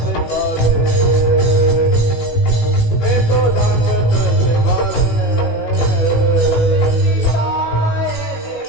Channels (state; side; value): late; right; 18 ms